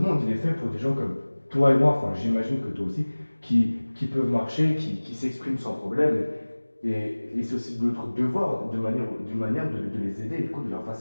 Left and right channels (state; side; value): inverted; both; correlation -1.00